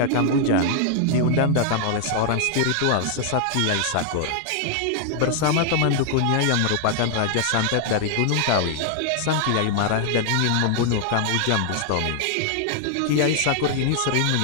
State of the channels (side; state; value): both; different; correlation 0.00